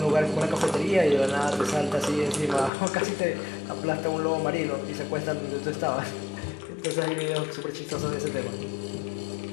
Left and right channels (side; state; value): right; drops out; at 2.7 s